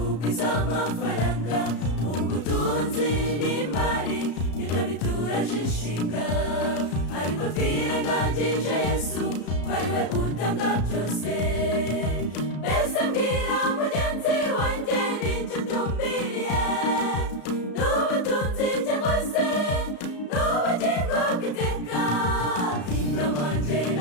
amafaranga, ubutunzi n'imari nibyo bituraje inshinga, ariko twirengagije Yesu ko ari we utanga byose. Mbese mbwira mugenzi wanjye n'icyo utumbiriye, n'ubutunzi cyangwa se n'ubugingo bw'iteka? Inama njye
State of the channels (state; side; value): late; right; 34 ms